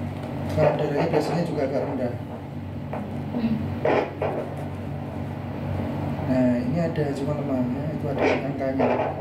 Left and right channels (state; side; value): identical; both; correlation 1.00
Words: darahnya biasanya juga agak rendah. Nah, ini ada cuma lemahnya, itu ada angkanya.